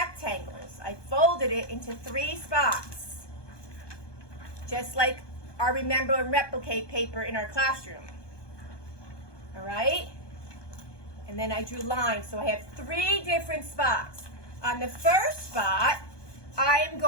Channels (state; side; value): late; right; 1.2 ms